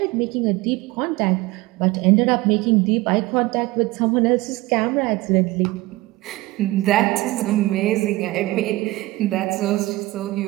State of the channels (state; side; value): quieter; left; 19.4 dB